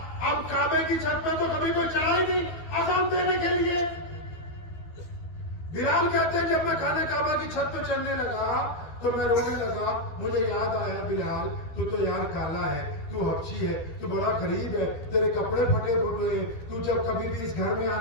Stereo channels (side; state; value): right; late; 12 ms